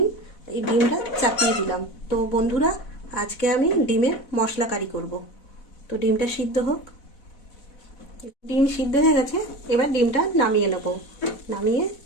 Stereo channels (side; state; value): right; late; 4.1 ms